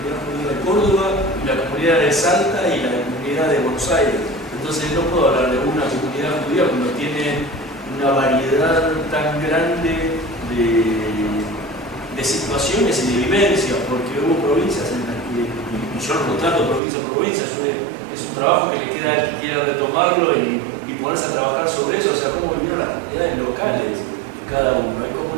judía de Córdoba, y la comunidad de Salta y la comunidad de Buenos Aires. Entonces no puedo hablar de una comunidad judía cuando tiene una variedad tan grande de situaciones y de vivencias, porque hubo provincias en las que, y yo no trato provincia por provincia, es un trabajo que le queda al que quiera retomarlo y ponerse a trabajar sobre eso. O sea, cómo vivieron las comunidades locales cada uno. Hay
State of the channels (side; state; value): left; drops out; at 16.8 s